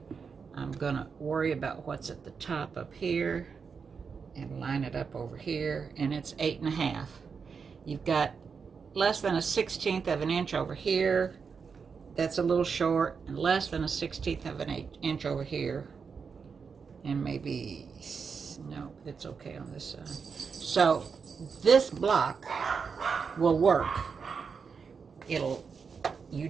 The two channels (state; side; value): quieter; left; 5.7 dB